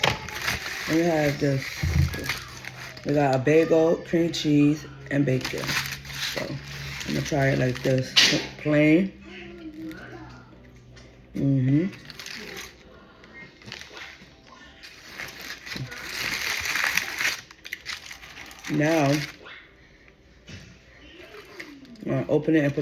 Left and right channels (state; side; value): identical; both; correlation 1.00